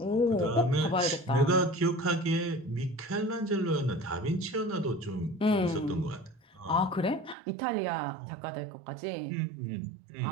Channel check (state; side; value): drops out; left; at 7.4 s